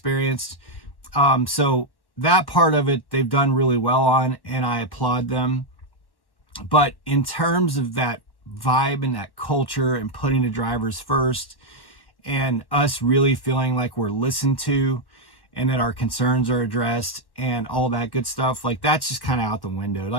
So that part of it, they've done really well on, and I applaud them. But in terms of that vibe and that culture and putting the drivers first and us really feeling like we're listened to and that our concerns are addressed and all that good stuff, like that's just kind of out the window.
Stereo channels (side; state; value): right; late; 1.1 ms